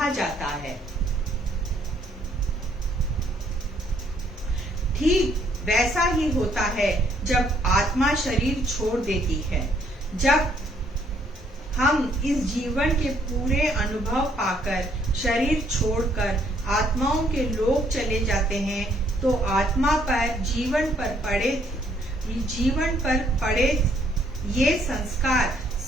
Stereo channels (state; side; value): normal; both; correlation 0.67